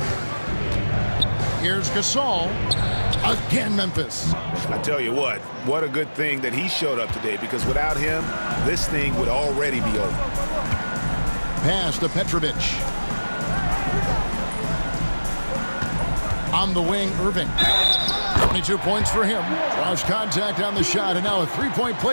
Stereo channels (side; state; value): both; inverted; correlation -1.00